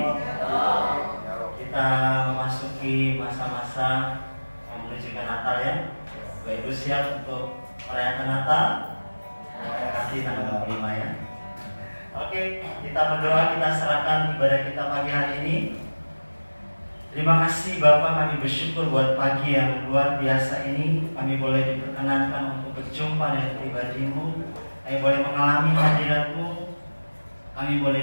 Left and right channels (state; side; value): inverted; both; correlation -1.00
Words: Kita memasuki masa-masa menuju ke Natal ya. Bapak Ibu siap untuk merayakan Natal? Terima kasih tanggal 25 ya. Oke, kita berdoa, kita serahkan ibadah kita pagi hari ini. Terima kasih Bapak, kami bersyukur buat pagi yang luar biasa ini. Kami boleh diperkenankan untuk berjumpa dengan pribadi-Mu. Kami boleh mengalami hadirat-Mu. Kami boleh